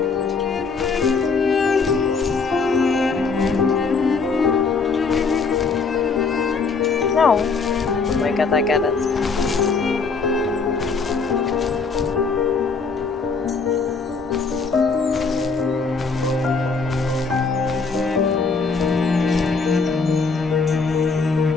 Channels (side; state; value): right; quieter; 4.7 dB